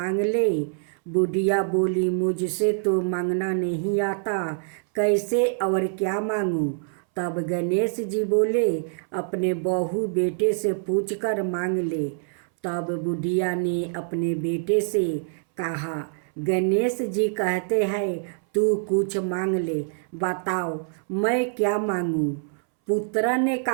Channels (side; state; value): left; silent; 62 dB below the other